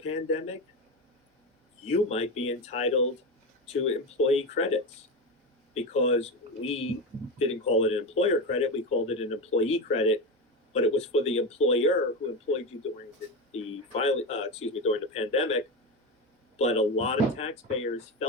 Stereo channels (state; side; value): normal; both; correlation 0.18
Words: You might be entitled to employee credits, because we didn't call it an employer credit, we called it an employee credit, but it was for the employer who employed you during during the pandemic. But a lot of taxpayers